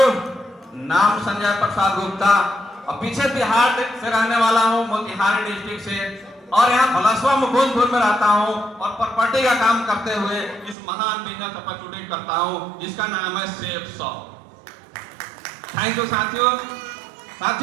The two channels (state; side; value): drops out; left; at 10.8 s